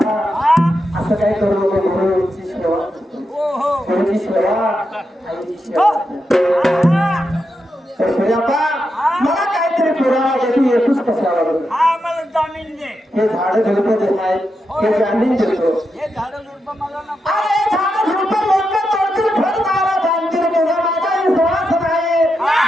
हा असं काय करू नको गुरुची सेवा हो हो गुरुची सेवा आईची सेवा हा तर सूर्यापा मला काहीतरी पुरावा दे तू येतोस कशाला बरं? हा मला जामीन दे हे झाडं झुडपं जे आहेत हे जामीन देतो हे झाडं झुडपं मला नको अरे झाडं झुडपं लोकं तोडतील फळदारा बांधतील तुझा माझा विश्वास नाही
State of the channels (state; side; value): normal; both; correlation 0.86